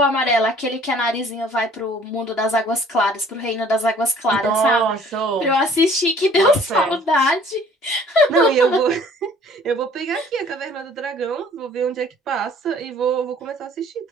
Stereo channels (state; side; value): normal; both; correlation 0.54